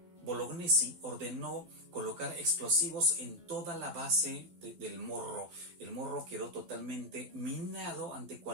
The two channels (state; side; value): late; left; 12 ms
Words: Bolognesi ordenó colocar explosivos en toda la base del Morro. El Morro quedó totalmente minado ante